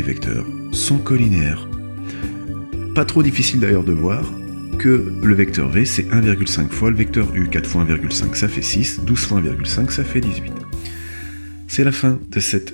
vecteurs sont collinéaires. Pas trop difficile d'ailleurs de voir que le vecteur v, c'est 1,5 fois le vecteur u. 4 fois 1,5, ça fait 6, 12 fois 1,5, ça fait 18. C'est la fin de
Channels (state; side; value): inverted; both; correlation -1.00